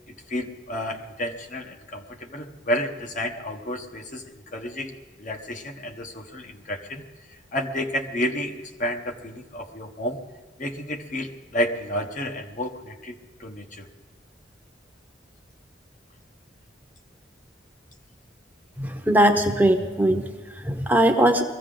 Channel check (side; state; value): both; normal; correlation 0.59